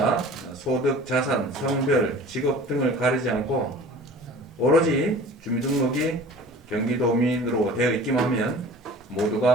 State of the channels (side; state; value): both; normal; correlation 0.44